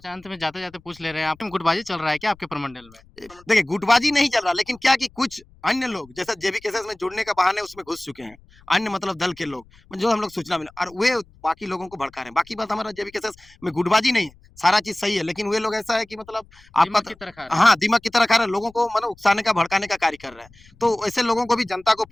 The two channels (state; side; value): noise; left; rumble, 27 dB below the sound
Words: अंत में जाते-जाते पूछ ले रहे हैं, आप गुटबाजी चल रहा है क्या आपके प्रमंडल में? देखिए, गुटबाजी नहीं चल रहा, लेकिन क्या कि कुछ अन्य लोग जैसे जेबीकेएसएस में जुड़ने का बहाने उसमें घुस चुके हैं। अन्य मतलब दल के लोग, जो हम लोग सूचना मिला, और वे बाकी लोगों को भड़का रहे हैं। बाकी बात, हमारा जेबीकेएसएस में गुटबाजी नहीं है, सारा चीज़ सही है, लेकिन वे लोग ऐसा है कि मतलब आपका दीमक की तरह खा रहे हैं। हाँ, दीमक की तरह खा रहे हैं, लोगों को मतलब उकसाने का, भड़काने का कार्य कर रहे हैं। तो ऐसे लोगों को भी जनता को